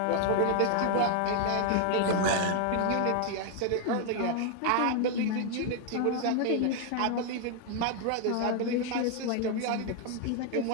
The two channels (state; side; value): different; both; correlation 0.00